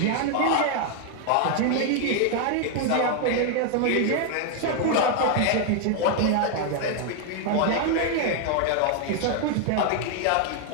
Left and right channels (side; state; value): both; different; correlation 0.00